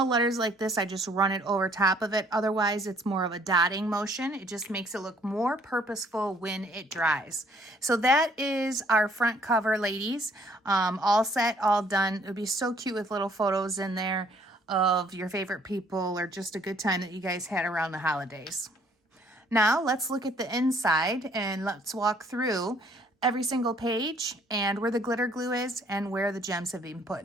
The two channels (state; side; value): normal; both; correlation 0.62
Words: letters like this, I just run it over top of it. Otherwise, it's more of a dotting motion. It just makes it look more purposeful when it dries. So that is our front cover, ladies. All set, all done. It would be so cute with little photos in there of your favorite people or just a good time that you guys had around the holidays. Now, let's look at the inside and let's walk through every single page and where the glitter glue is and where the gems have been put